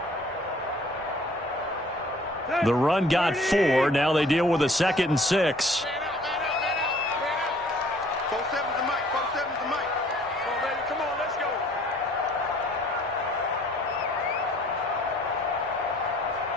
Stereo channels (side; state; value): both; normal; correlation 0.56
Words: The run got 4. Now they deal with a 2nd and 6. 4-7's the mic. 4-7's the mic. Come on, baby. Come on, let's go.